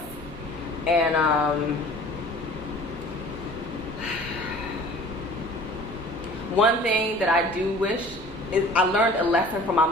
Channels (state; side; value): normal; both; correlation 0.46